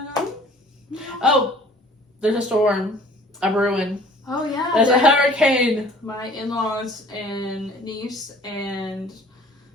on? Oh, there's a storm. A brewing. Oh, yeah. There's a hurricane. My in-laws and niece and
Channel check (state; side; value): normal; both; correlation 0.51